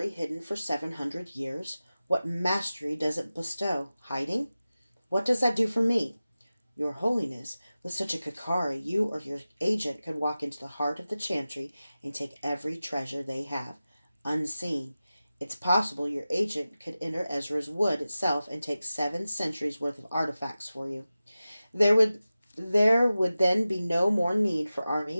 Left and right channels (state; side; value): inverted; both; correlation -0.95